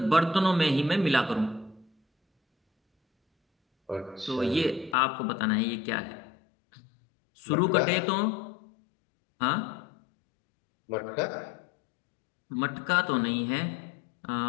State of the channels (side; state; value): right; drops out; at 5.0 s